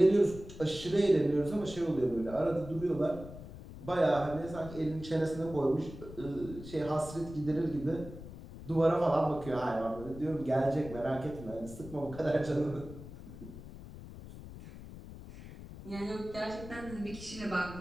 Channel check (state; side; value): noise; left; rumble, 14 dB below the sound